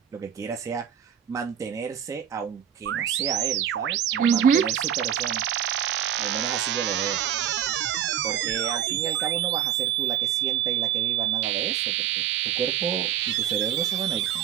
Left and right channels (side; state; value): left; quieter; 9.6 dB